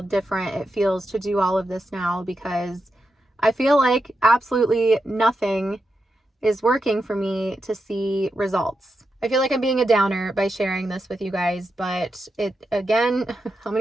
different it feels to do all of this now because I feel like absolutely nothing is working for me to see results. I feel like I'm being a downer by sharing this with you guys, but it, again, how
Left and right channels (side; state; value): both; normal; correlation 0.87